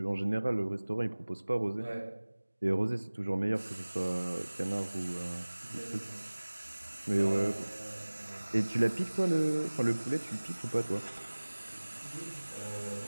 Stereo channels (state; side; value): inverted; both; correlation -1.00